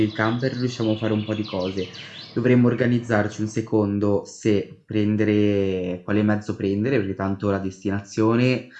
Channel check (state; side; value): identical; both; correlation 1.00